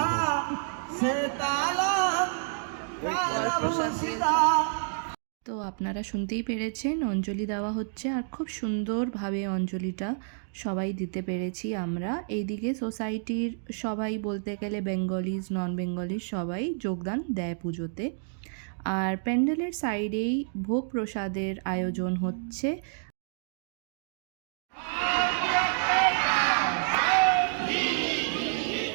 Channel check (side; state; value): left; silent; digital silence